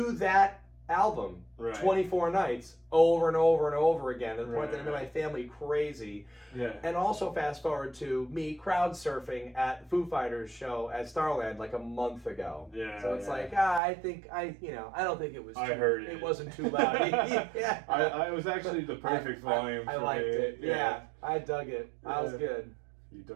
that album 24 nights over and over and over again to the point that it made my family crazy. Yeah. And also fast forward to me crowd surfing at Foo Fighters show at Starland like a month ago. Yeah. So it's like I don't think it was. I heard it. It wasn't too loud. Yeah. I was actually the perfect volume. I liked it. Yeah. I dug it. I was good. You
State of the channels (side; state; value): left; drops out; at 13.8 s